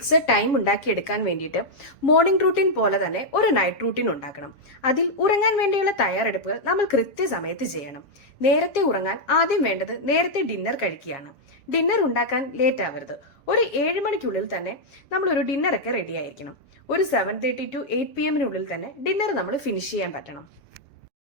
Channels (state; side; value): late; right; 6.9 ms